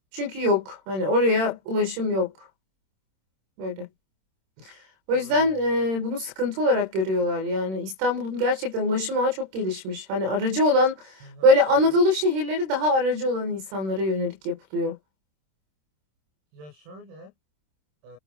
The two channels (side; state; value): left; late; 26 ms